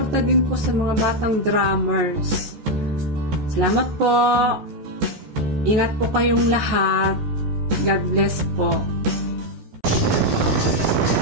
din po sa mga batang drummers. Salamat po. Ingat po kayong lahat. God bless po.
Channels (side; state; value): left; late; 14 ms